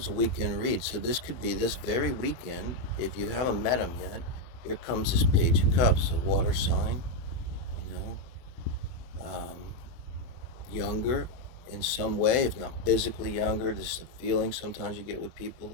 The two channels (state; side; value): late; right; 24 ms